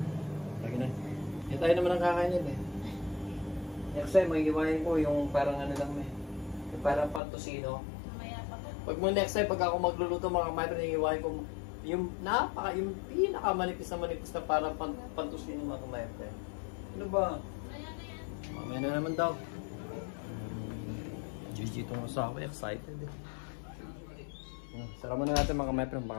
Lagi na. Hindi tayo naman ang kakain yun, eh. Next time, may iwain ko yung parang ano lang, eh. Yung parang pantusino. Mamaya pa ko. Pag mo next time, pag ako magluluto mga kamay, iwain ko yung pinakamanipis na parang pantusino mga kamay. Ano ba? Mamaya na naman daw. GG itong asawa, excited eh. Sara muna natin mga kamay friend,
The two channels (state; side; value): drops out; right; at 7.2 s